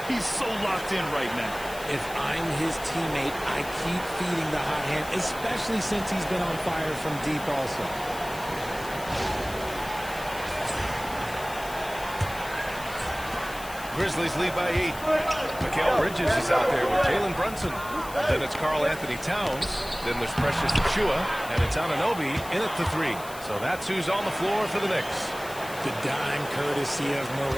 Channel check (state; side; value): noise; left; hiss, 15 dB below the sound